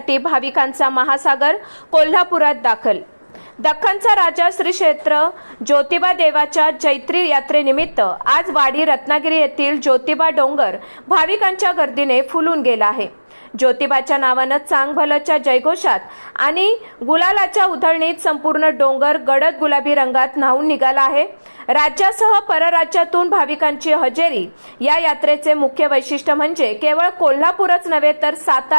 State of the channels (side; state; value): both; inverted; correlation -1.00